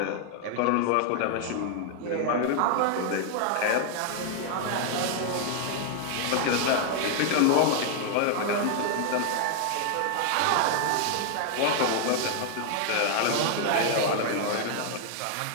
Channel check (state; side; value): different; both; correlation 0.00